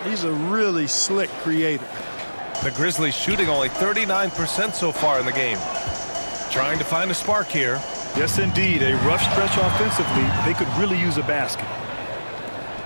He's a really slick creator. The Grizzlies shooting only 39% so far in the game. Trying to find a spark here. Yes, indeed. A rough stretch offensively. They could really use a basket.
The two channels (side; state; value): both; inverted; correlation -1.00